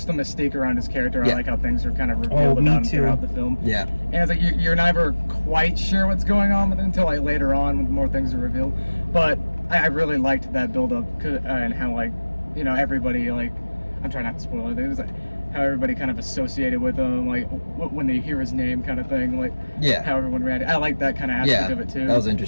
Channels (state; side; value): inverted; both; correlation -1.00